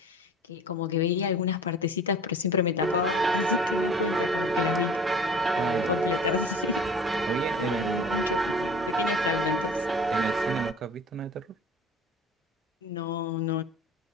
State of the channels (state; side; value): normal; both; correlation 0.43